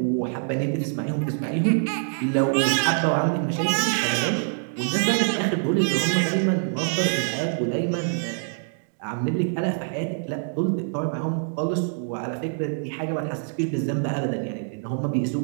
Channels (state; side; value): silent; left; digital silence